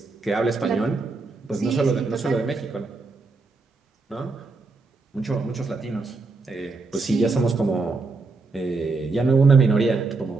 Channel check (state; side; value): quieter; left; 3.8 dB